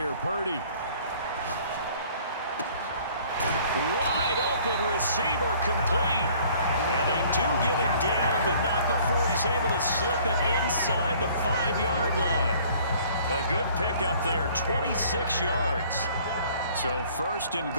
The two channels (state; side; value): inverted; both; correlation -0.55